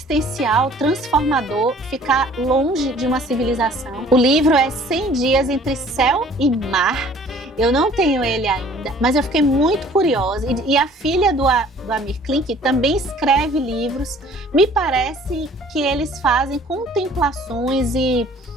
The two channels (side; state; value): both; normal; correlation 0.53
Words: transformador, ficar longe de uma civilização. O livro é 100 Dias entre Céu e Mar. Eu não tenho ele ainda, mas eu fiquei muito curiosa. E a filha do Amir Klink também escreve livros. Me parece que eles fazem contemplações e